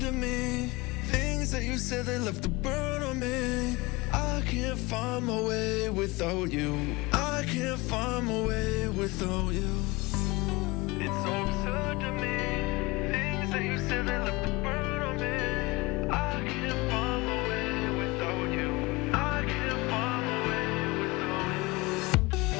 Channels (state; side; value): quieter; right; 23.0 dB